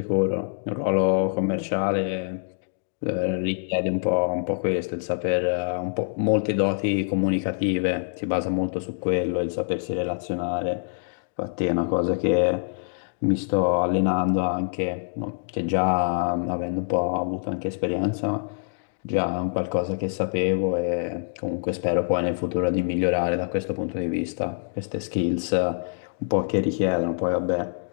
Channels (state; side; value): silent; right; digital silence